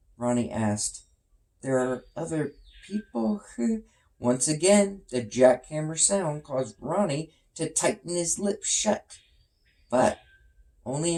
Ronnie asked, "There are other people?" Once again, the jackhammer sound caused Ronnie to tighten his lips shut, but only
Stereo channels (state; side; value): identical; both; correlation 1.00